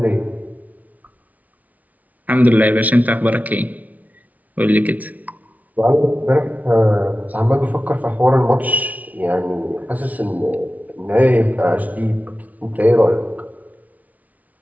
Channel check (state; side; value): late; left; 0.074 ms